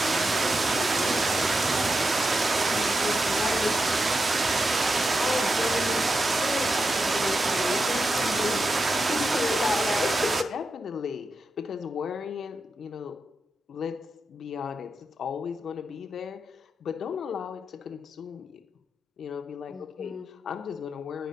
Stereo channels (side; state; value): both; normal; correlation 0.88